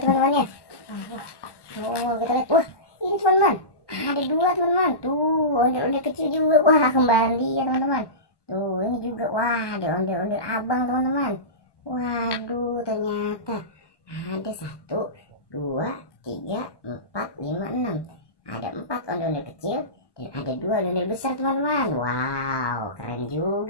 ya. Oh, kita lihat. Wah, ini teman-teman, ada dua teman-teman. Tuh ondel-ondel kecil juga. Wah kembali ya teman-teman. Tuh ini juga. Wah ada ondel-ondel abang teman-teman. Waduh ternyata ada 1, 2, 3, 4, 5, 6. Ada 4 ondel-ondel kecil dan ada 2 ondel besar teman-teman. Wow keren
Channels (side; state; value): right; late; 1.1 ms